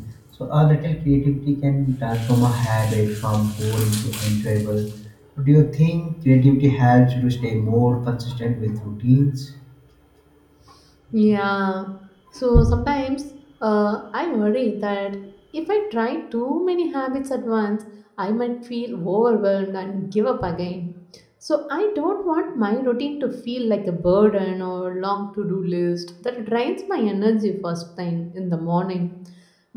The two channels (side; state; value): both; identical; correlation 1.00